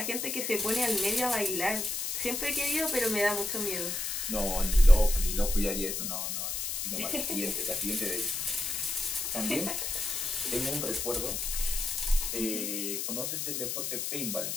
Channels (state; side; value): noise; left; hiss, 2 dB below the sound